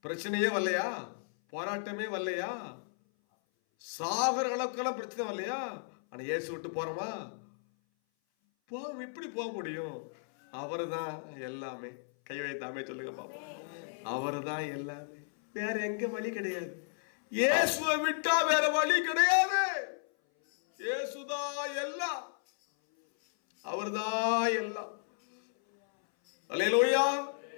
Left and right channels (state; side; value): silent; right; 56 dB below the other